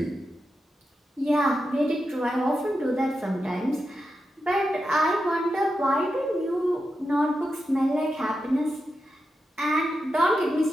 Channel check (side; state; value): both; normal; correlation 0.88